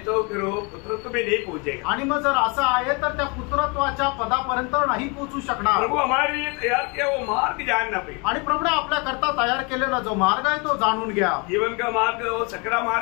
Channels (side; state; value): right; quieter; 31.3 dB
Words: तो फिर वो पुत्रत्व में नहीं पहुंचेगा. आणि मग जर असं आहे तर त्या पुत्रत्वाच्या पदापर्यंत नाही पोहोचू शकणार. प्रभु हमारे लिए तैयार किया वो मार्ग जानना पे, आणि प्रभूने आपल्या करता तयार केलेला जो मार्ग आहे तो जाणून घ्या. जीवन का मार्ग वो सकरा